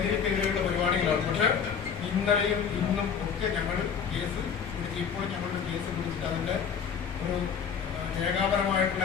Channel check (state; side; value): quieter; right; 6.9 dB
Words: പരിപാടികളാണ്. പക്ഷെ ഇന്നലെയും ഇന്നും ഒക്കെ ഞങ്ങൾ കേസ് പിടിച്ച് ഇപ്പോൾ ഞങ്ങളുടെ കേസ് പിടിച്ചിട്ട് അതിൻ്റെ ഒരു രേഖാപരമായിട്ടുള്ള